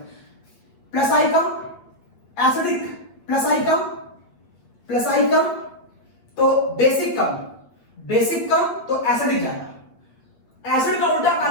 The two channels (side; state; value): right; late; 8.6 ms